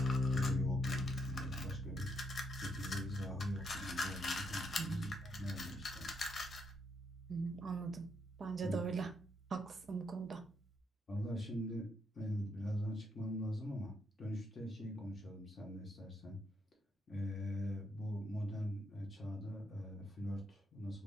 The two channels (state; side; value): normal; both; correlation 0.76